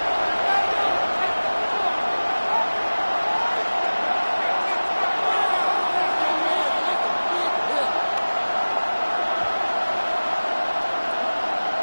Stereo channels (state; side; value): inverted; both; correlation -1.00